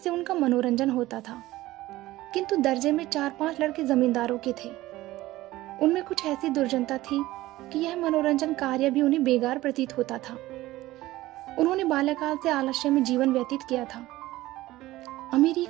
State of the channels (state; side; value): quieter; left; 17.0 dB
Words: उनका मनोरंजन होता था। किंतु दर्जे में 4-5 लड़के जमींदारों के थे। उनमें कुछ ऐसी दुर्जनता थी कि यह मनोरंजन कार्य भी उन्हें बेकार प्रतीत होता था। उन्होंने बाल्यकाल से आलस्य में जीवन व्यतीत किया था। अमीरी